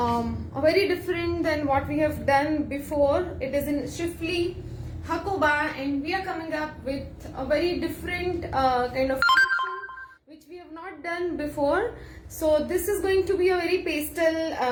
very different than what we have done before. It is in Shifli Hakoba, and we are coming up with a very different kind of collection which we have not done before. So this is going to be a very pastel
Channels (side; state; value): both; identical; correlation 1.00